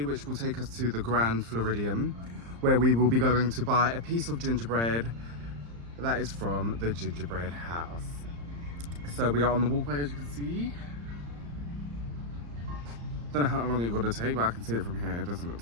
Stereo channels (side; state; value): left; late; 35 ms